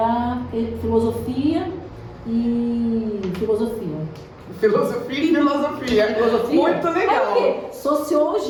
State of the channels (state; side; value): identical; both; correlation 1.00